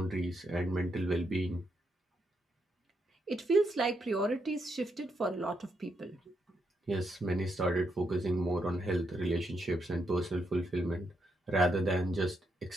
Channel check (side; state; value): both; normal; correlation 0.80